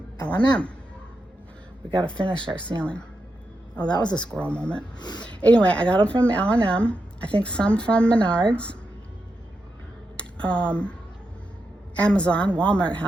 L&M. We got to finish our ceiling. Oh, that was a squirrel moment. Anyway, I got them from L&M. I think some from Menards. Amazon, Walmart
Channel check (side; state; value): both; normal; correlation 0.86